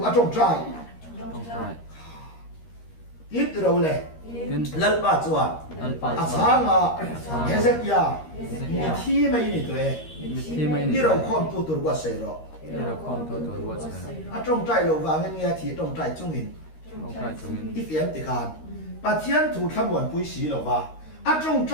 à trong trai tin từ đầu lệ lần ba chuan à sáng à thế giới kia mi thi mấy này tuổi đi đâu không tu tu quá sấy rồi à trong trai lo vàng nghe thì trong trai chung in if em thì khan bà thiên thủ tham quan bùi xí lầu va, à trong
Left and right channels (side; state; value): right; late; 13 ms